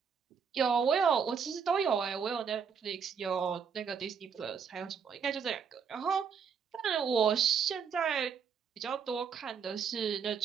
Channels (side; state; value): left; quieter; 6.7 dB